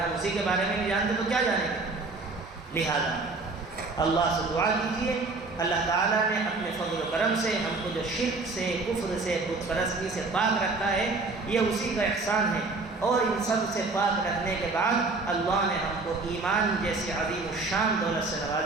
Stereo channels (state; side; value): quieter; left; 3.6 dB